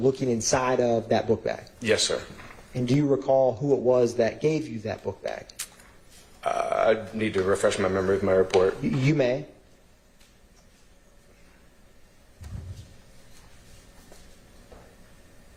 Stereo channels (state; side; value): identical; both; correlation 1.00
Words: inside of that book bag? Yes, sir. And do you recall who it was that gave you that book bag? I need to refresh my memory with my report. You may.